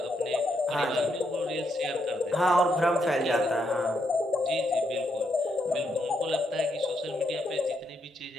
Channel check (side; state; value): both; normal; correlation 0.78